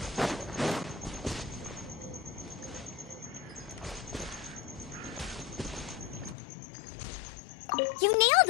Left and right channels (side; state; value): right; drops out; at 6.4 s